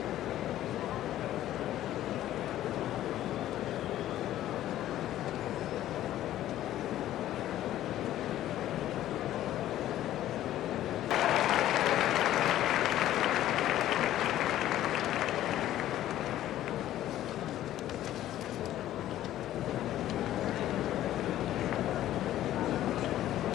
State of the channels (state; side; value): quieter; right; 13.1 dB